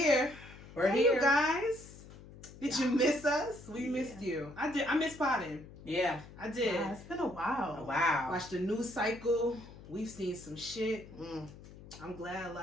We're Hey, here. you guys. Did you miss us? We Yeah. missed you. I did. I missed potting. Yeah. I did. Yeah, it's been a while. Oh, wow. Watched the news cycle. We've seen some shit. Mm. I'm glad a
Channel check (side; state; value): left; noise; hum, 18 dB below the sound